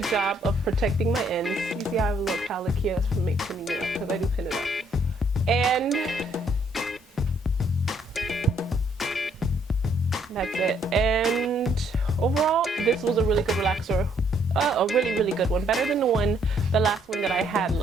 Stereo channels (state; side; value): normal; both; correlation 0.68